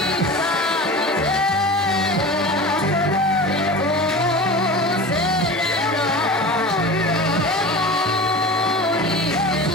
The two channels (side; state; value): both; normal; correlation 0.33